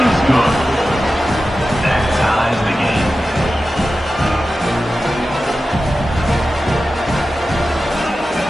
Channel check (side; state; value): both; normal; correlation 0.93